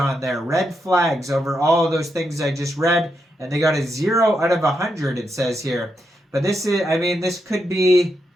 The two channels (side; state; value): both; normal; correlation 0.83